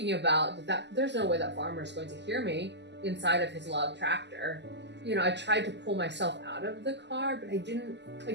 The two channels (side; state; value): left; late; 0.50 ms